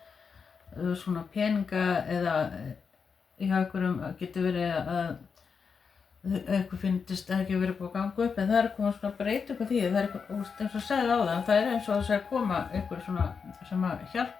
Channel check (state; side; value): quieter; right; 5.8 dB